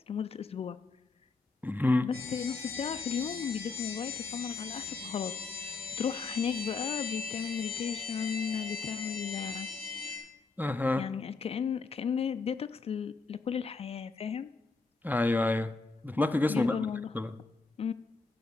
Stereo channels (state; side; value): quieter; right; 4.1 dB